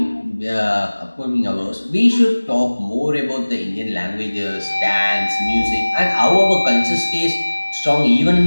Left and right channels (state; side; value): inverted; both; correlation -1.00